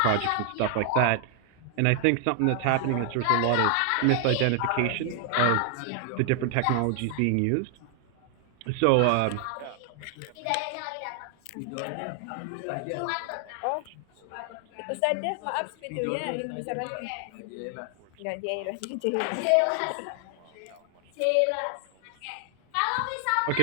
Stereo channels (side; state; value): both; different; correlation 0.00